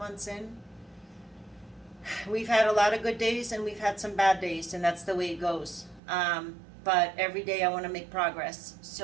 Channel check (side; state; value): left; drops out; at 6.0 s